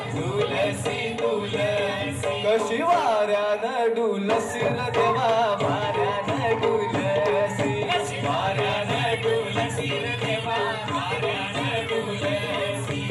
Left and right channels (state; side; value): identical; both; correlation 1.00